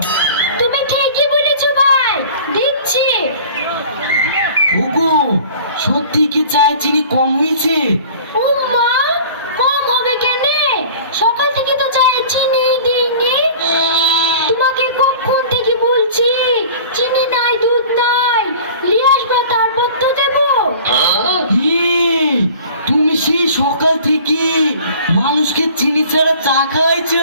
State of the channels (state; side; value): inverted; both; correlation -0.44